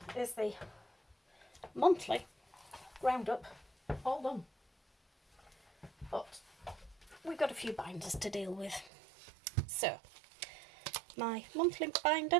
is the monthly roundup all done. But we've got a few binders to deal with. So, my monthly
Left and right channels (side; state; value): left; drops out; at 8.9 s